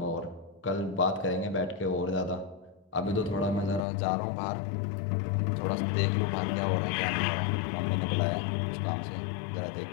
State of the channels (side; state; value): right; drops out; at 3.8 s